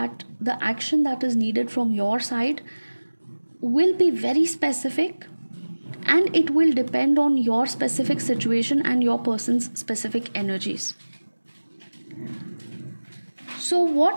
the action that is needed from your side will be very specific, and it will depend on your specific situation and your person's specific energies. So,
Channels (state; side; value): inverted; both; correlation -1.00